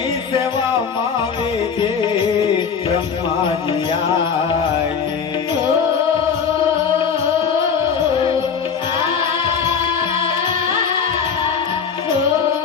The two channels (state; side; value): quieter; right; 6.4 dB